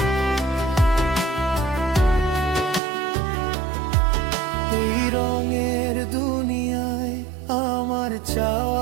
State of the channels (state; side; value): drops out; left; at 2.8 s